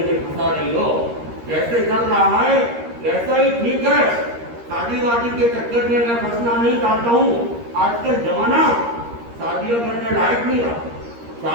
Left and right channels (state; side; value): late; left; 13 ms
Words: फंसा रही हो, जैसे चल रहा है वैसा ही ठीक है, शादी वादी के चक्कर में मैं फंसना नहीं चाहता हूँ। आजकल जमाना शादियां करने लायक नहीं रहा,